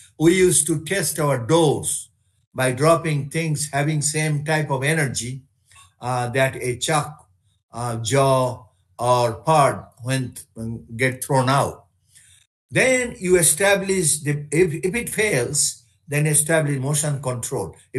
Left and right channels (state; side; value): identical; both; correlation 1.00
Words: we used to test our doors by dropping things having same type of energy that a chuck, jaw, or pod when get thrown out. Then you establish, if it fails, then establish motion control.